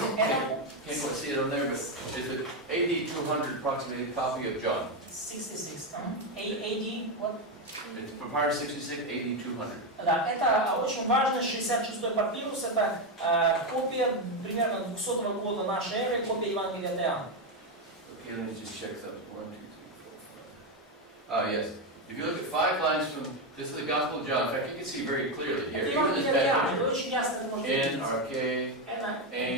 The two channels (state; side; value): normal; both; correlation 0.08